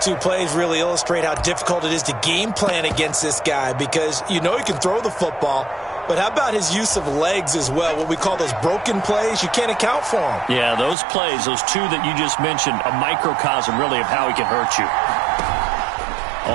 two plays really illustrate how difficult it is to game plan against this guy, because you know he can throw the football, but how about his use of legs as well? What we call those broken plays, you can't account for them. Yeah, those plays, those two that you just mentioned, a microcosm really of how he can hurt you.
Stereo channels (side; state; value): left; drops out; at 11.0 s